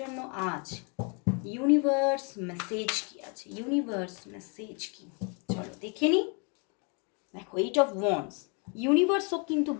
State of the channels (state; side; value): quieter; right; 35.2 dB